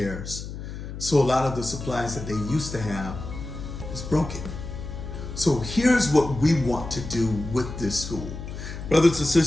So a lot of the supplies that they used to have is broken. So here's what we want to do with this school. Brothers and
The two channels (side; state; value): left; noise; hum, 9 dB below the sound